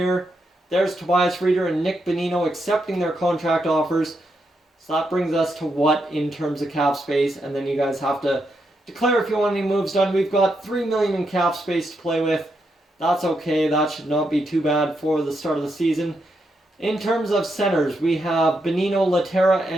There's Tobias Reeder and Nick Bonino accepting their contract offers. So that brings us to what in terms of cap space, and then you guys have to declare if you want any moves done. We've got $3 million in cap space to play with. That's okay. That should not be too bad for the start of the season. In terms of centers, we have Bonino, Laterra,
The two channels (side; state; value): both; normal; correlation 0.82